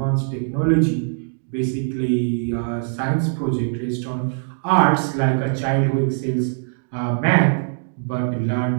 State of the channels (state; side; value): silent; left; digital silence